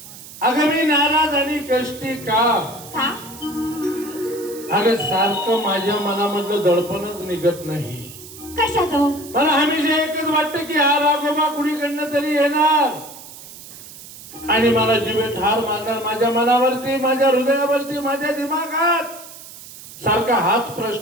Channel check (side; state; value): right; noise; hiss, 16 dB below the sound